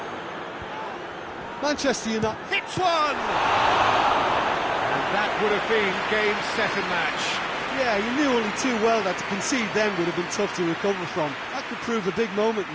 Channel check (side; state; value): both; identical; correlation 1.00